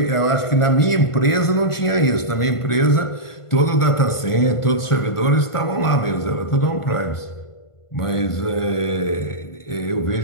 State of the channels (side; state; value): right; late; 1.5 ms